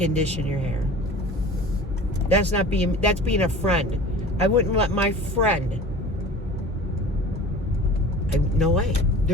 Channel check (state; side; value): normal; both; correlation 0.40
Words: your hair. That's being a friend. I wouldn't let my friend. No way.